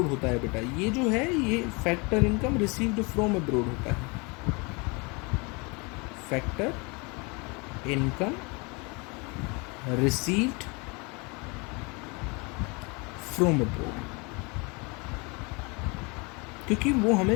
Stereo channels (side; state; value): right; quieter; 29.2 dB